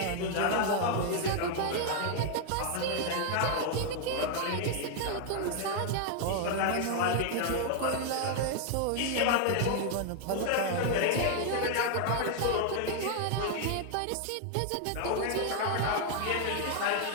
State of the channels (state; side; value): different; both; correlation 0.00